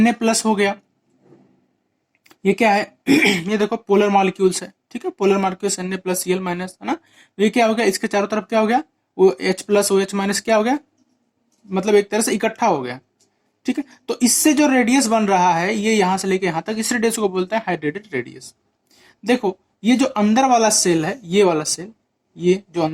प्लस हो गया, ये क्या है ये देखो पोलर मॉलिक्यूल्स है, ठीक है, polar molecules Na plus Cl minus, है ना। तो ये क्या हो गया, इसके चारों तरफ क्या हो गया, वो H प्लस OH माइनस क्या हो गया, मतलब एक तरह से इकट्ठा हो गया। ठीक है, तो इससे जो रेडियस बन रहा है ये यहां से लेके यहां तक, इस रेडियस को बोलते हैं हाइड्रेटेड रेडियस। देखो ये जो अंदर वाला सेल है, ये वाला सेल, ये जो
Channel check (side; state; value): both; identical; correlation 1.00